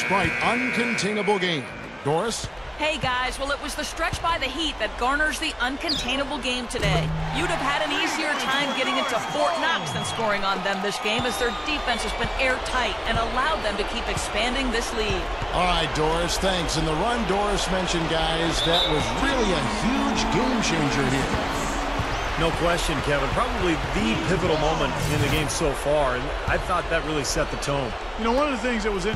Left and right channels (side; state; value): both; identical; correlation 1.00